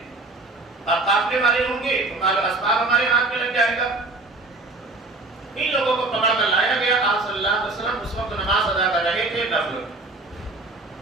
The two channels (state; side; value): quieter; left; 3.1 dB